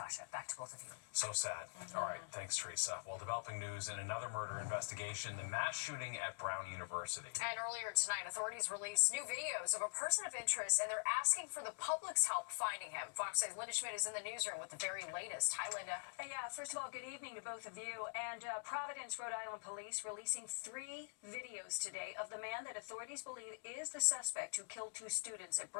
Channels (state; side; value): silent; right; digital silence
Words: back to both of you. So sad. All right, thanks, Teresa. Well, developing news in another murder investigation, the mass shooting at Brown University. And earlier tonight, authorities released new videos of a person of interest, and they're asking for the public's help finding him. Fox 6's Linda Schmidt is in the newsroom with the very latest. Hi, Linda. Yeah, first of all, good evening to both of you. And Providence, Rhode Island police releasing 3 videos today of the man that authorities believe is the suspect who killed 2 students at